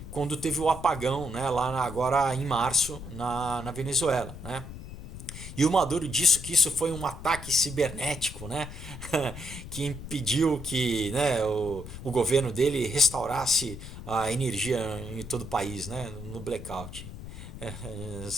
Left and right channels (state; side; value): noise; left; rumble, 11 dB below the sound